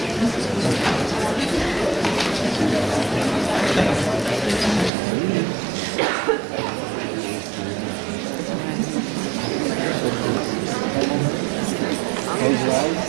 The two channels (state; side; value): drops out; left; at 4.9 s